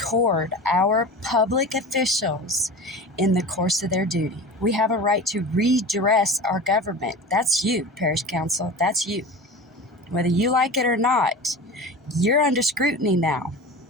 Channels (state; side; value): normal; both; correlation 0.33